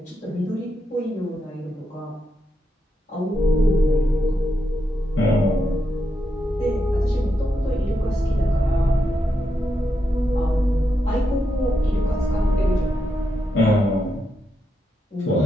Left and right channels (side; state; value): both; normal; correlation 0.84